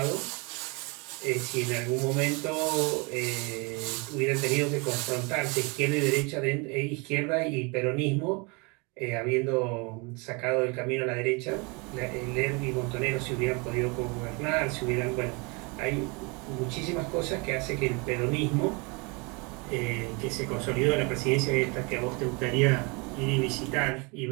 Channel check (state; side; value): quieter; left; 29.9 dB